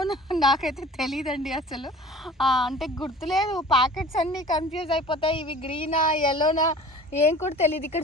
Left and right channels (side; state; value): both; normal; correlation 0.44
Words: నాకైతే తెలియదండి అసలు. అంటే గుర్తులేదు, ప్యాకెట్స్ అన్నీ కన్ఫ్యూజ్ అయిపోతాయి, ఇవి గ్రీనా ఎల్లోనా ఏం కూడా తెలియదు. ఇక్కడ